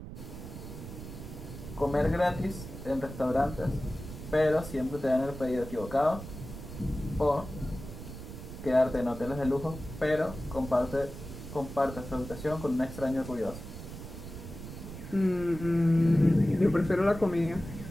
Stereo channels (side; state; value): right; noise; rumble, 11 dB below the sound